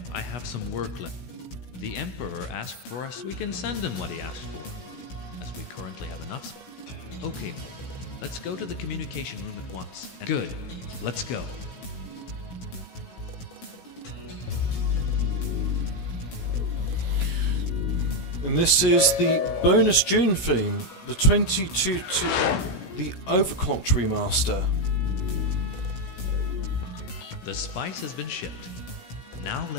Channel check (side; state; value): right; late; 16 ms